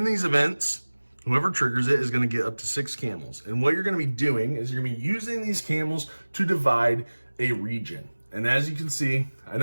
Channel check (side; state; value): both; inverted; correlation -1.00